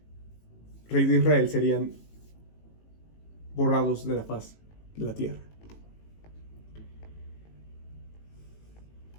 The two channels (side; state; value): right; late; 18 ms